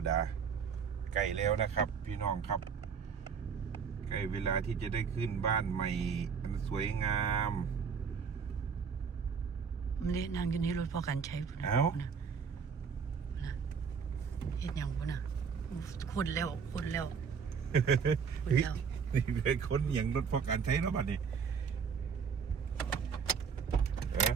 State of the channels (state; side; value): quieter; left; 6.3 dB